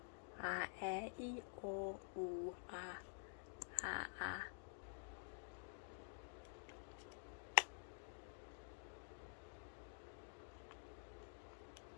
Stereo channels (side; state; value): right; silent; digital silence